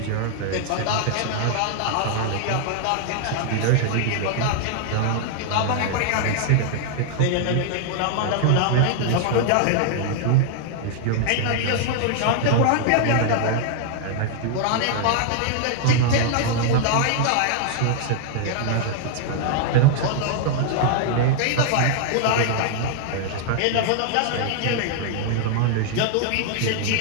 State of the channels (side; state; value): both; different; correlation 0.00